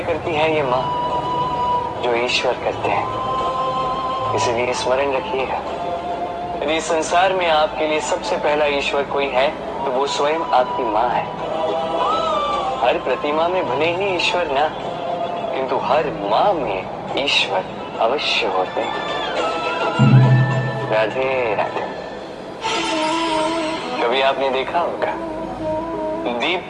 करती है ये माँ जो ईश्वर करते हैं। इसलिए स्मरण रखिएगा, यदि संसार में आपके लिए सबसे पहला ईश्वर कोई है तो वो स्वयं आपकी माँ है। हर प्रतिमा में भले ही ईश्वर ना, किंतु हर माँ में ईश्वर अवश्य होते हैं। राधे राधे। कभी आपने देखा होगा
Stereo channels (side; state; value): both; identical; correlation 1.00